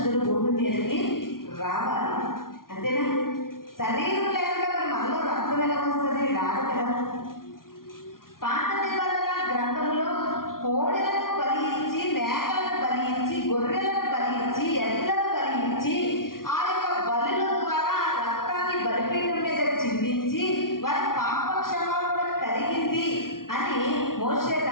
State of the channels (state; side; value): late; right; 0.92 ms